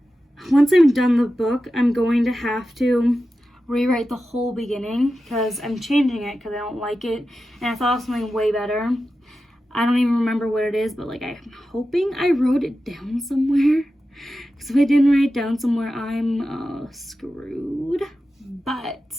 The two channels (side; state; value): both; normal; correlation 0.92